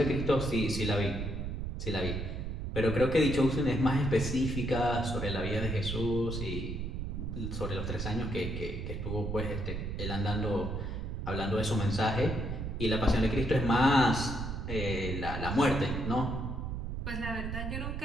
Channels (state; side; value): noise; right; rumble, 4 dB below the sound